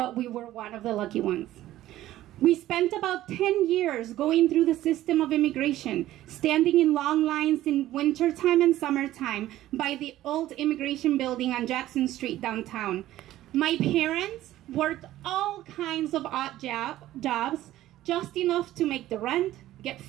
we were one of the lucky ones. We spent about 10 years going through the system of immigration, standing in long lines in wintertime and summertime by the old immigration building on Jackson Street downtown. My parents worked all kinds of odd jobs, just enough to make the rent, get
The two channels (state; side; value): quieter; left; 14.4 dB